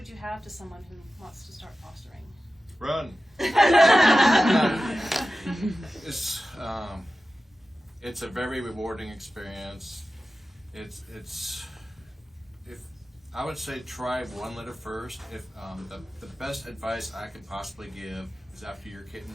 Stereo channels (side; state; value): both; normal; correlation 0.94